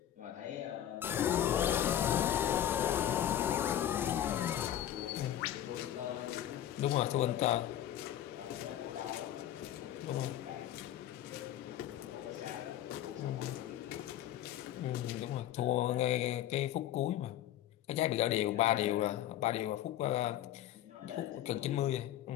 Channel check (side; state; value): right; quieter; 11.8 dB